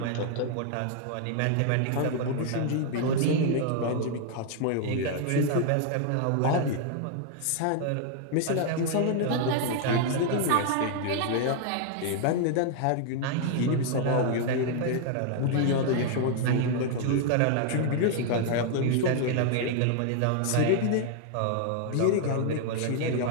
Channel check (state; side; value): different; both; correlation 0.00